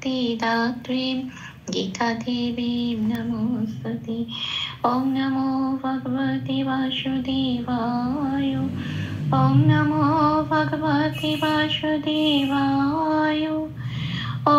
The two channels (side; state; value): both; identical; correlation 1.00